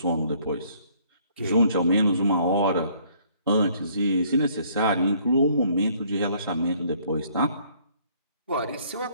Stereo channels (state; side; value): inverted; both; correlation -0.62